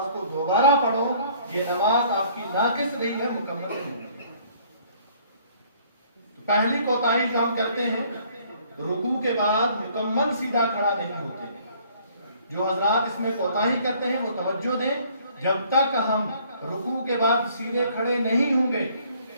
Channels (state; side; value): inverted; both; correlation -0.59